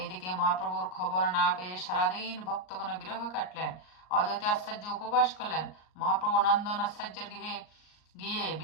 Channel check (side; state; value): right; late; 38 ms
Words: মহাপ্রভুর খবর না পেয়ে সারাদিন ভক্তগণ বিরহ কাটলেন। অদ্বৈত আচার্য উপবাস করলেন। মহাপ্রভু নন্দন আচার্যের গৃহে গিয়ে